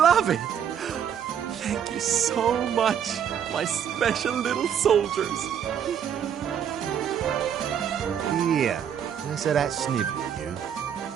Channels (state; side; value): quieter; left; 8.6 dB